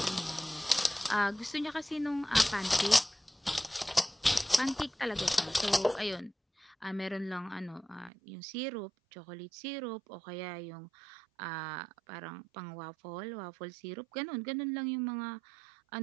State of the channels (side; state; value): left; drops out; at 8.1 s